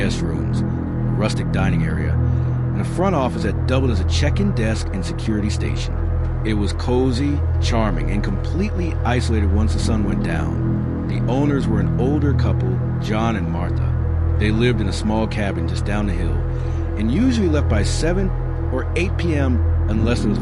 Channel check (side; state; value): both; identical; correlation 1.00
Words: rooms, a rustic dining area, and a front office that doubled as a check-in desk and security station. It was cozy, charming, and completely isolated once the sun went down. The owners were an older couple, John and Martha. They lived in a small cabin just down the hill, and usually left by 7 or 8 p.m. unless there was